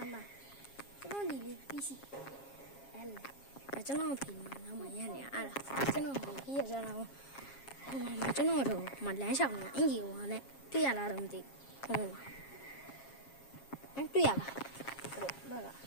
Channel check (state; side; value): late; right; 7.3 ms